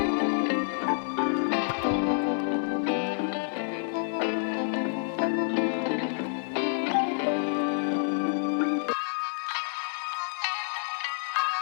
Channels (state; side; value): silent; right; digital silence